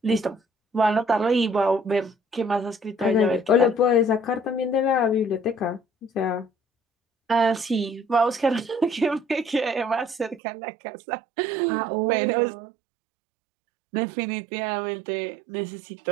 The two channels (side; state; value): left; drops out; at 10.4 s